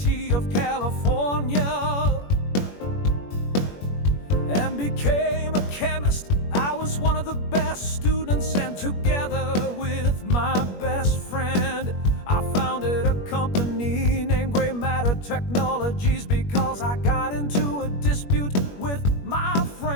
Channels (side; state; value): right; late; 21 ms